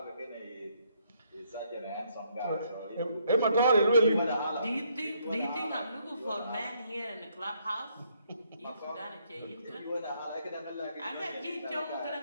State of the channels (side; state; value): both; inverted; correlation -0.71